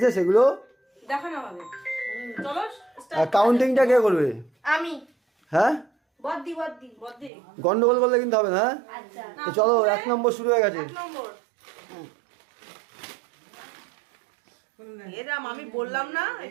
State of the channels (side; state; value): left; drops out; at 7.3 s